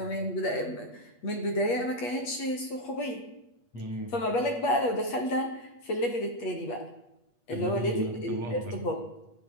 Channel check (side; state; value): right; late; 8.3 ms